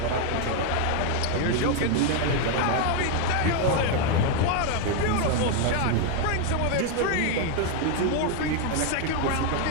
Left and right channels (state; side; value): different; both; correlation 0.01